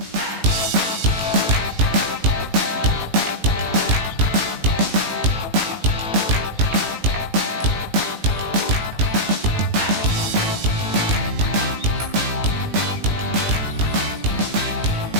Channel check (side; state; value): left; late; 18 ms